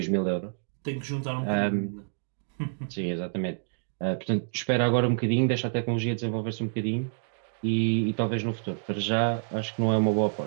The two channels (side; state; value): left; silent; digital silence